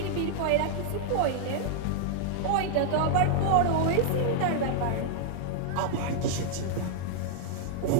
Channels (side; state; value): both; different; correlation -0.01